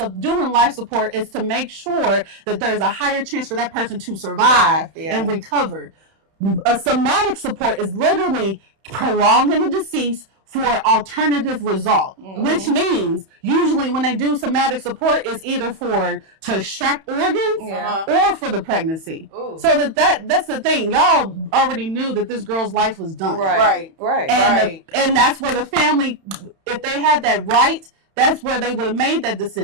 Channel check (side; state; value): left; late; 31 ms